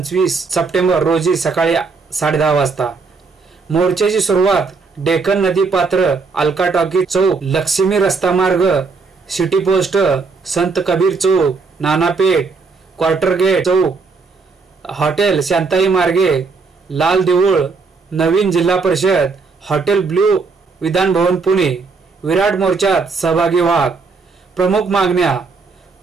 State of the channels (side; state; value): left; quieter; 4.5 dB